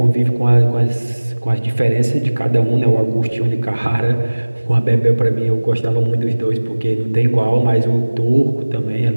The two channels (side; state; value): both; inverted; correlation -1.00